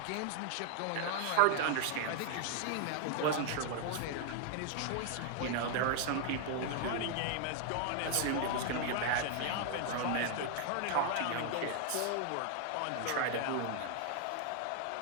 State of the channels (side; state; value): both; different; correlation 0.00